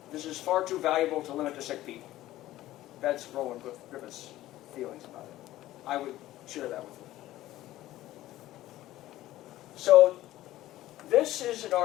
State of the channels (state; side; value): quieter; right; 15.2 dB